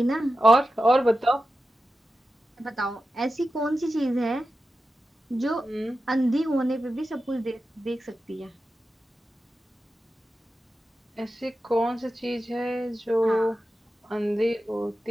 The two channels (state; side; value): normal; both; correlation 0.92